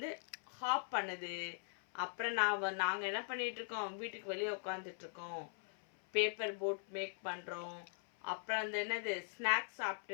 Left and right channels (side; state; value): right; silent; 50 dB below the other